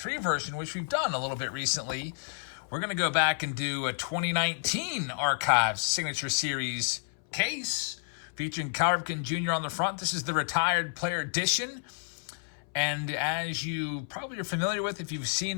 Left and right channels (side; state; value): right; silent; 58 dB below the other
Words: version, which we've done a little bit recently, we're going to go back and do a 2019 Archive Signature Series case featuring Cal Ripken Jr. on the front. This is the Retired Player Edition. And as you probably are familiar with, if you've